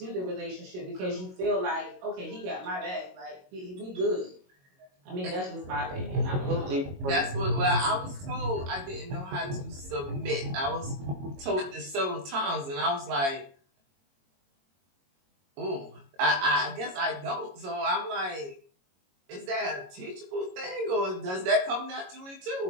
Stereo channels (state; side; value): late; left; 22 ms